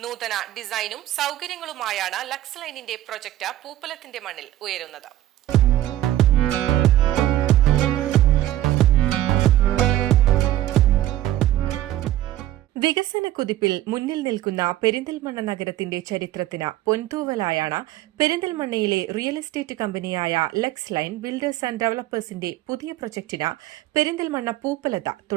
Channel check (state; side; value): quieter; left; 14.0 dB